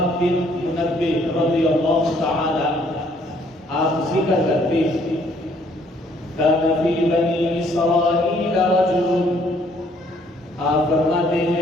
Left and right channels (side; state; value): both; normal; correlation 0.64